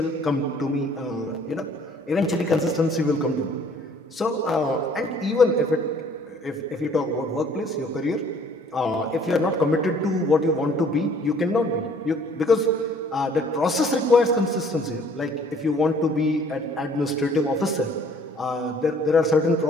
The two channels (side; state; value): both; normal; correlation 0.57